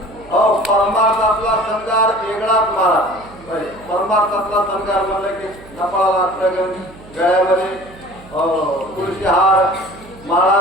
परमार्थातला संगार वेगळाच महाराज. परमार्थातला संगार म्हणलं की कपाळाला अष्टगंध, गळ्यामध्ये तुळशी हार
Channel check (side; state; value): right; noise; hum, 21 dB below the sound